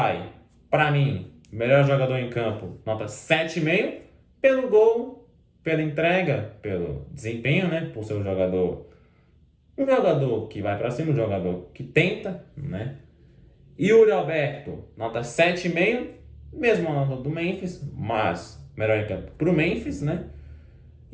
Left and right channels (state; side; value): identical; both; correlation 1.00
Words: para mim, melhor jogador em campo, nota 7,5. Pelo gol, pela entrega, pelo desempenho, né? Por ser um jogador que vai para cima, um jogador que tenta, né? Yuri Alberto, nota 7,5. Mesma nota do Memphis, mas melhor em campo pro Memphis, né?